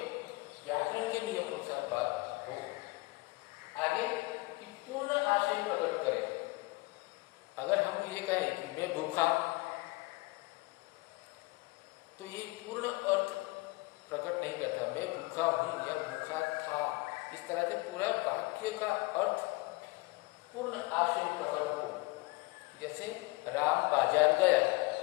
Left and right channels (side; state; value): right; quieter; 23.5 dB